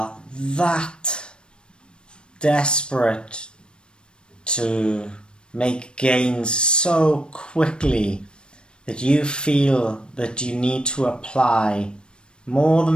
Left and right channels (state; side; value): late; right; 0.054 ms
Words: that desperate to make gains so quickly that you feel that you need to apply more